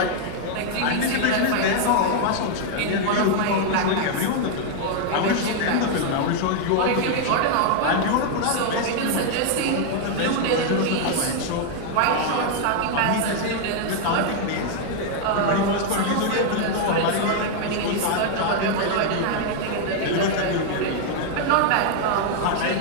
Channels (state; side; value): different; both; correlation 0.00